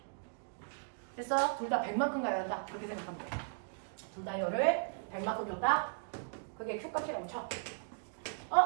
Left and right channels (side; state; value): left; silent; digital silence